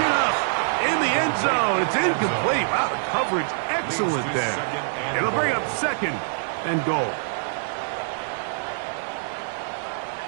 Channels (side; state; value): left; silent; digital silence